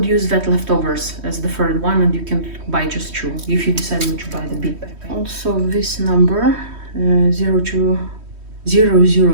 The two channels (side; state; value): left; late; 3.1 ms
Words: use that leftovers as the 3rd one, and you can buy just 2 if you decide not to buy the bit pack. Also this number